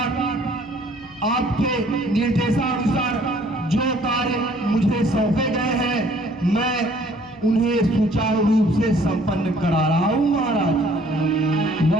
आपके निर्देशानुसार जो कार्य मुझे सौंपे गए हैं, मैं उन्हें सुचारू रूप से संपन्न करा रहा हूं महाराज।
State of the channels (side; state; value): left; noise; hum, 25 dB below the sound